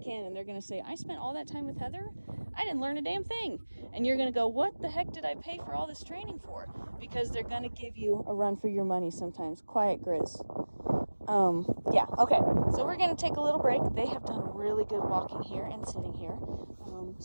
And they're going to say, I spent all that time with Heather. I didn't learn a damn thing. And you're going to go, what the heck did I pay for all this training for? Because they're going to give you a run for your money sometimes. Quiet, Grizz. Yeah, okay. So we're going to take a little break. They have done really good walking here and sitting here.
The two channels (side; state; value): both; inverted; correlation -1.00